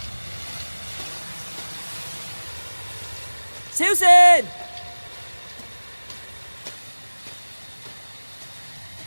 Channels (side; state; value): both; inverted; correlation -1.00